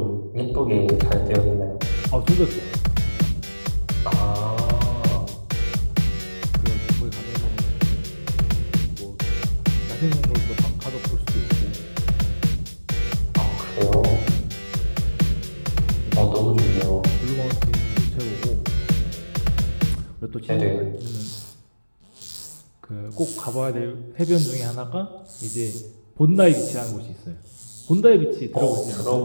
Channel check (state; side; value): inverted; both; correlation -1.00